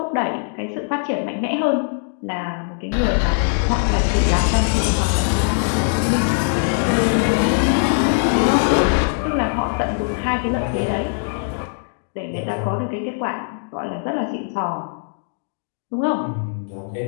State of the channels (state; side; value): silent; right; digital silence